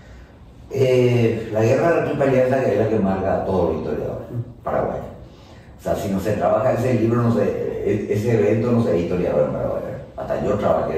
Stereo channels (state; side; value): identical; both; correlation 1.00